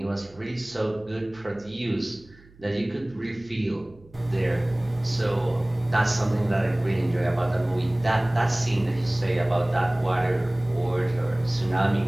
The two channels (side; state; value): right; noise; hum, 26 dB below the sound